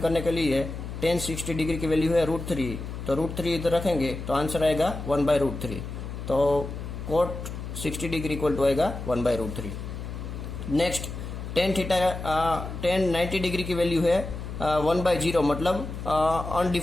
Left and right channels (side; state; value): left; noise; hum, 8 dB below the sound